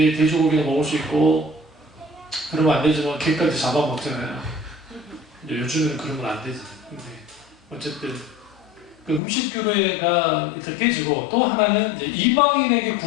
돼지고기는 먹을 수 있고 그러면 안 되지만 개까지 잡아먹잖아요. 요즘에는 그러면 안 되지. 근데 어쨌든 그 음식교류가 일단 깨지고 또 하나는 이제 이방인에게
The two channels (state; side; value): drops out; right; at 9.2 s